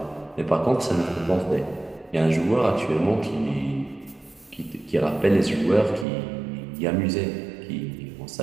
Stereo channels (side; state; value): left; drops out; at 6.1 s